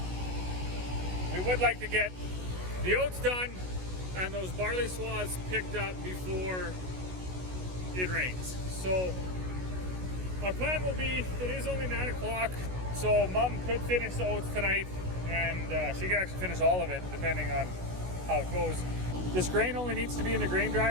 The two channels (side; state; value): left; late; 16 ms